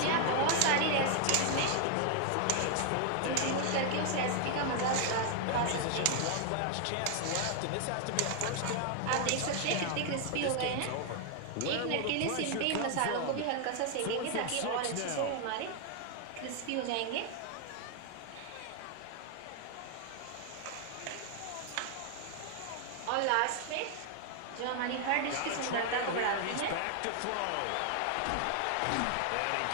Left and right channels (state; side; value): different; both; correlation 0.00